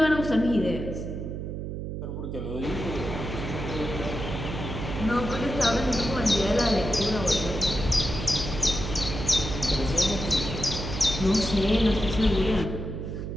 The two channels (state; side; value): noise; right; hum, 5 dB below the sound